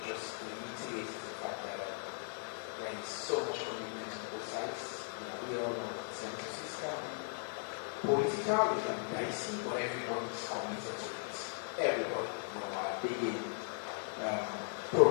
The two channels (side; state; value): right; silent; 53 dB below the other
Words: just reiterate, is the fact that there is so much commitment on both sides. We all know that the census is political, it can be dicey, but everybody is committed to it. Everybody, are big